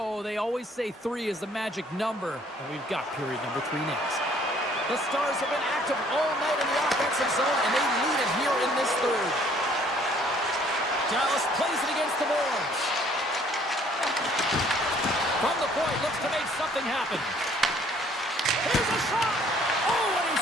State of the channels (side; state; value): both; normal; correlation 0.60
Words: They always say 3 is the magic number, and we've got period number 3 next. The Stars have been active all night in the offensive zone, and they lead it here in this third. Dallas plays it against the boards. From the point, looks to make something happen. Here's a shot! Oh, and he